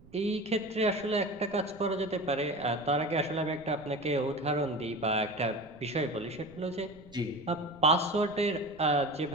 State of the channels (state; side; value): noise; right; rumble, 23 dB below the sound